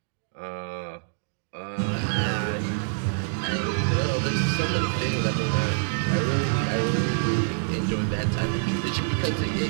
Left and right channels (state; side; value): silent; left; digital silence